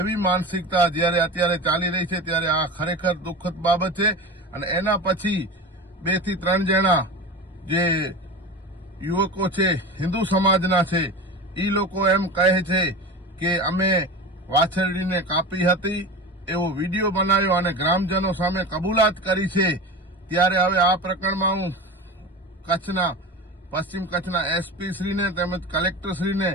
मानसिकता ज्यारे अत्यारे चाली रही छे, त्यारे आ खरेखर दुखद बाबत छे। अने एना पछी 2 થી 3 जणा जे युवको छे हिंदू समाजना छे, ई लोको एम कहे छे के अमे वाछरडीने कापी हती एवो विडियो बनाव्यो अने ग्रामजनो सामे कबूलात करी छे। त्यारे हवे आ प्रकरणमां हुं कच्छना पश्चिम कच्छना एसपी श्रीने तेमज कलेक्टर श्रीने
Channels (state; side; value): normal; both; correlation 0.29